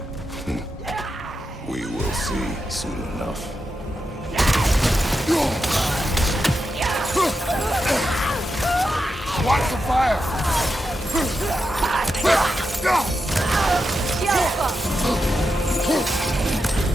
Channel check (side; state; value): both; normal; correlation 0.87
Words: We will see soon enough. Watch the fire!